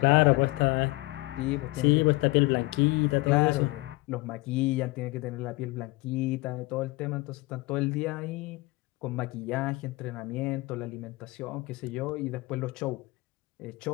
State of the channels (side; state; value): right; quieter; 22.6 dB